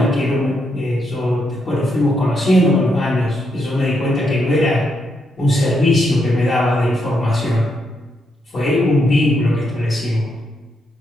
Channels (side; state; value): both; normal; correlation 0.79